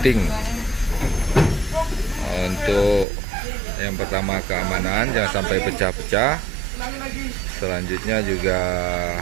untuk yang pertama keamanan, jangan sampai pecah-pecah. Selanjutnya juga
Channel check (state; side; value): drops out; left; at 3.1 s